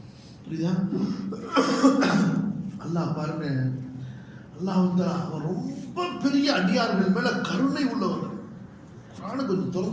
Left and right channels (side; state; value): both; identical; correlation 1.00